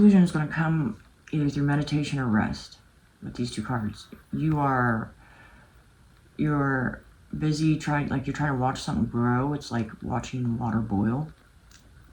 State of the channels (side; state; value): both; identical; correlation 1.00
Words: is going to come either through meditation or rest with these two cards. You're busy trying, like you're trying to watch something grow. It's like watching water boil.